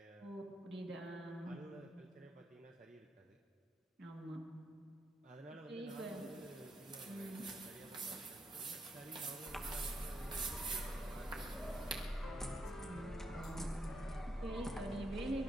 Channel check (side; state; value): both; normal; correlation 0.78